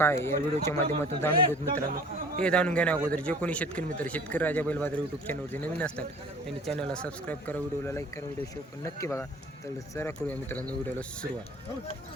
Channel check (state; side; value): normal; both; correlation 0.48